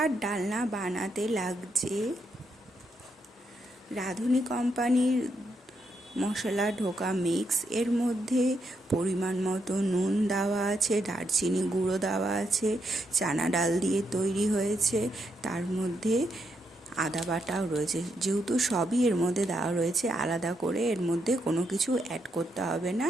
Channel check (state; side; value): normal; both; correlation 0.80